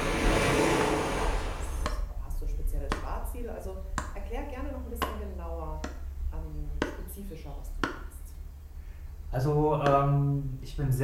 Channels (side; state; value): both; identical; correlation 1.00